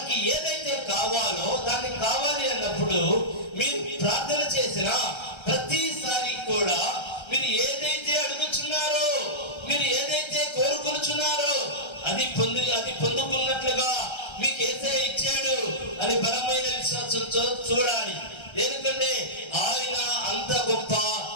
ఏదైతే కావాలో దాన్ని కావాలి అన్నప్పుడు మీరు ప్రార్థన చేసిన ప్రతిసారి కూడా మీరు ఏదైతే అడుగుచున్నారో, మీరు ఏదైతే కోరుకుంటున్నారో అది పొందుకున్నట్లుగా మీకు యేసయ్య ఇచ్చాడు అని బలమైన విశ్వాసంతో చూడాలి. ఎందుకంటే ఆయన అంత గొప్ప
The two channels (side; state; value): right; late; 1.3 ms